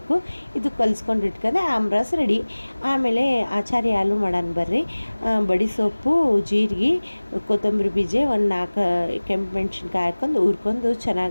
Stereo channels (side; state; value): both; inverted; correlation -1.00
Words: ಇದು ಕಲಿಸ್ಕೊಂಡು ಇಟ್ಕೊಂಡೆ ಆಮ್ರಸ್ ರೆಡಿ. ಆಮೇಲೆ ಆಚಾರಿ ಹಾಲು ಮಾಡೋಣ ಬರ್ರಿ. ಬಡಿ ಸೊಪ್ಪು, ಜೀರಿಗೆ, ಕೊತ್ತಂಬರಿ ಬೀಜ, ಒಂದು 4 ಕೆಂಪು ಮೆಣಸಿನ್ಕಾಯಿ ಹಾಕ್ಕೊಂಡು ಹುರ್ಕೊಂಡು